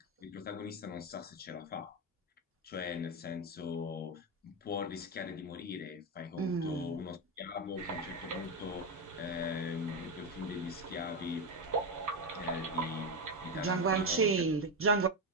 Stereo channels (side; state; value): both; normal; correlation 0.11